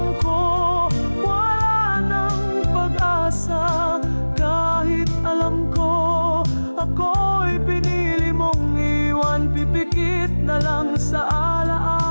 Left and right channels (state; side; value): inverted; both; correlation -1.00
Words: ko wala nang pag-asa, kahit alam ko ako'y pinili mong iwan, pipikit na lang sa